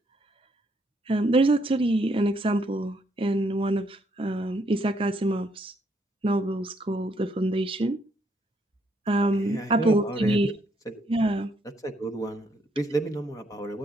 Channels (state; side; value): normal; both; correlation 0.72